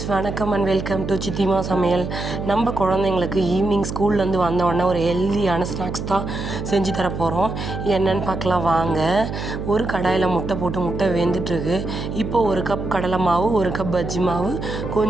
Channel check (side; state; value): right; noise; hum, 6 dB below the sound